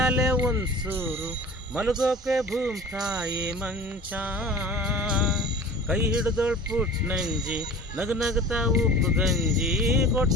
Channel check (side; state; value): both; normal; correlation 0.40